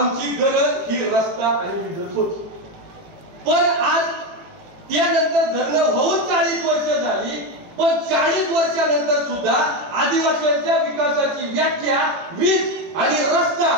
गरज ही रस्ता आणि वीज होती. पण आज त्यानंतर धरणं होऊन 40 वर्ष झाली. पण 40 वर्षानंतर सुद्धा आदिवासींच्या विकासाची व्याख्या वीज आणि रस्ता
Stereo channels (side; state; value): left; late; 18 ms